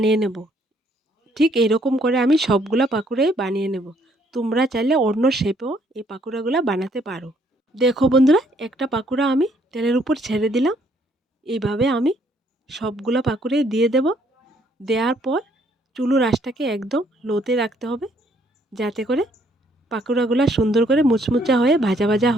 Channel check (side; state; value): both; normal; correlation 0.67